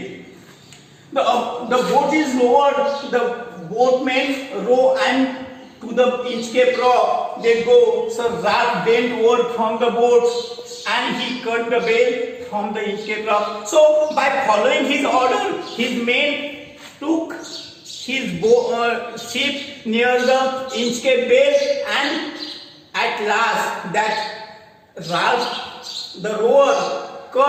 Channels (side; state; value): both; identical; correlation 1.00